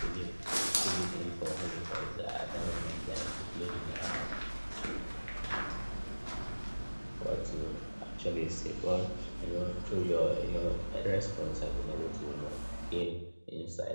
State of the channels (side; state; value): both; inverted; correlation -1.00